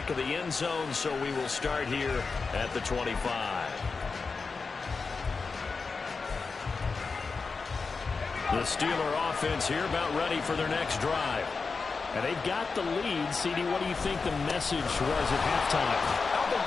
of the end zone, so we will start here at the 25. The Steeler offense here about ready for their next drive. And they've got the lead. CD, what do you think the message was at halftime? I don't think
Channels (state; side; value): quieter; right; 4.6 dB